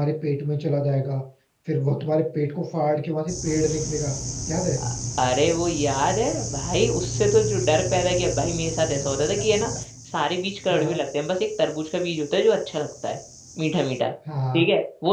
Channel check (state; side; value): identical; both; correlation 1.00